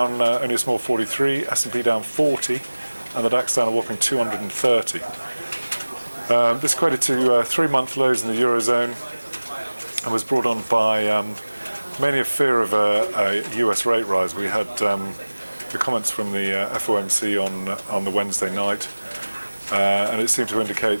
only a small 43, S&P down 40 and the DAX down a whopping 230. This equated to 3-month lows in the Eurozone and was brought on by mainly a fear of a US rate rise. We had the comments from the FOMC on the Wednesday night, and it seemed to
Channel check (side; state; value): both; inverted; correlation -1.00